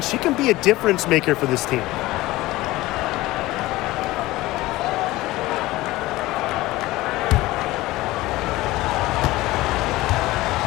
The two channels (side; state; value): right; quieter; 18.4 dB